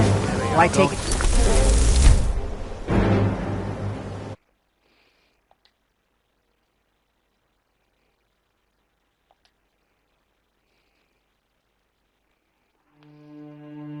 Why take it?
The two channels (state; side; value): identical; both; correlation 1.00